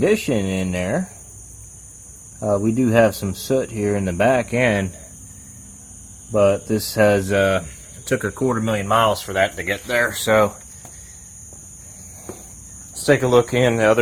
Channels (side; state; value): both; identical; correlation 1.00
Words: in there. We do have some soot here in the back end, but this has took 250,000 miles for that to get there. So let's take a look in the